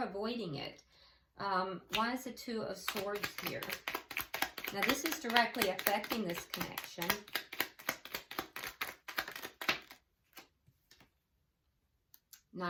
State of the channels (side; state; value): both; identical; correlation 1.00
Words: avoiding it. Why is the Two of Swords here? Now, this is directly affecting this connection.